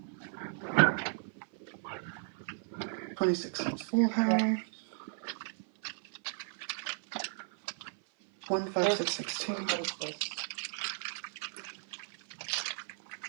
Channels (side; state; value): left; silent; 54 dB below the other